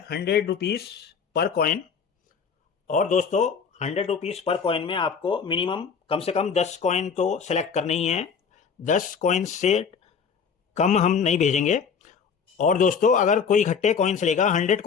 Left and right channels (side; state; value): right; quieter; 6.3 dB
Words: 100 रुपीज़ पर कॉइन। और दोस्तों 100 रुपीज़ पर कॉइन में आपको मिनिमम कम से कम 10 कॉइन तो सेलेक्ट करने ही हैं। 10 कॉइन से कम हम नहीं भेजेंगे। और दोस्तों अगर कोई इकट्ठे कॉइन्स लेगा, 100